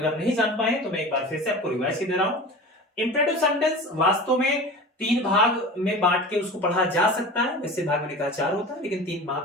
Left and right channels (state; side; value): normal; both; correlation 0.35